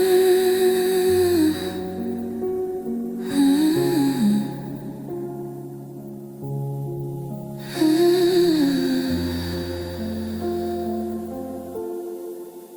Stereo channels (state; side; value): identical; both; correlation 1.00